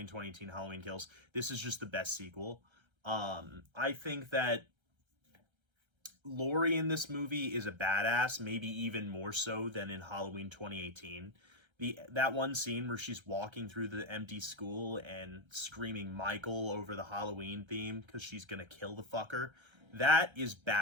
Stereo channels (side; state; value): left; late; 1.3 ms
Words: 2018 Halloween Kills. This is just the best sequel. I think that Laurie in this movie is a badass, maybe even more so than in Halloween 2018. That one scene where she's walking through the empty school and screaming Michael over the Halloween theme because she's gonna kill the fucker, that is